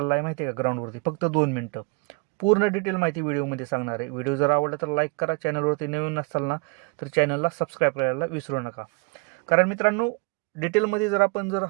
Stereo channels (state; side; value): quieter; left; 29.0 dB